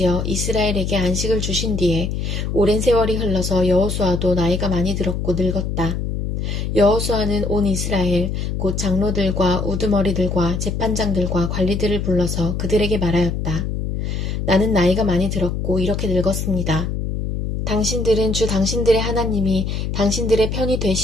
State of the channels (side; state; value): left; noise; hum, 2 dB below the sound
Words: 이스라엘에게 안식을 주신 뒤에 오랜 세월이 흘러서 여호수아도 나이가 많이 들었고 늙었다. 여호수아는 온 이스라엘 곧 장로들과 우두머리들과 재판장들과 관리들을 불러서 그들에게 말하였다. 나는 나이가 많이 들었고 이렇게 늙었습니다. 당신들은 주 당신들의 하나님이 당신들의 편이